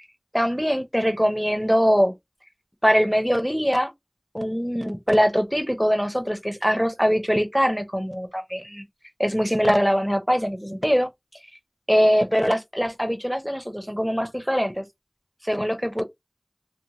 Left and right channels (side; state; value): both; identical; correlation 1.00